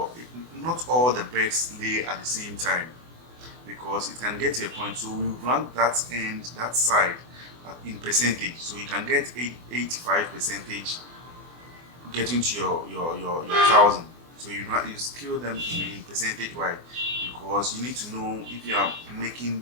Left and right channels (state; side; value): late; left; 24 ms